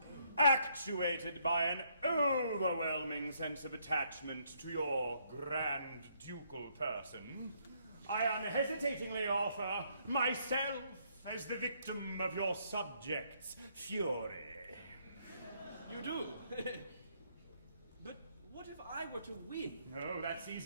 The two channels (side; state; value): both; inverted; correlation -0.70